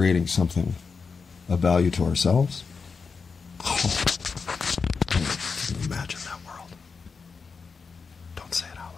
something of value to ourselves. Can you imagine that world? Don't say it out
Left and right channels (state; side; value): quieter; right; 5.1 dB